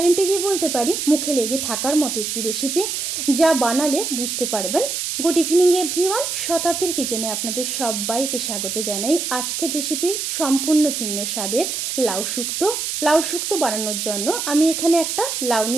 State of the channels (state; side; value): noise; right; hiss, 3 dB below the sound